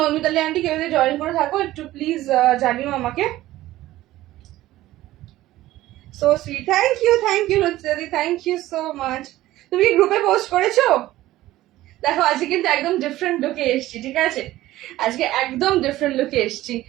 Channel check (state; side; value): quieter; left; 15.8 dB